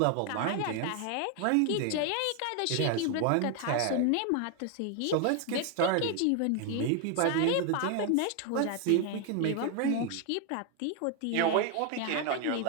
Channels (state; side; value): different; both; correlation 0.01